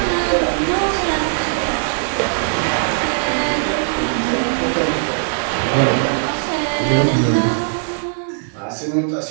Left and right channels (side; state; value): left; silent; digital silence